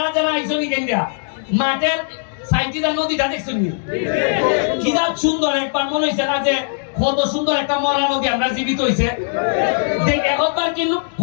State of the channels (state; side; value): silent; right; digital silence